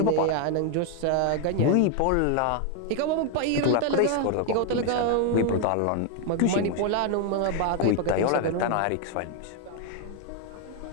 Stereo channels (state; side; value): different; both; correlation 0.00